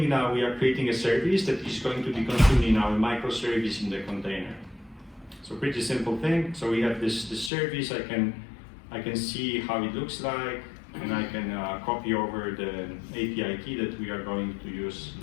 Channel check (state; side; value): drops out; right; at 7.5 s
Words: now, we are creating a service that is going to be consumed in our microservice in the container. So pretty simple thing. So we have this service. I can see how it looks like, and I can copy over the API key that we are going to use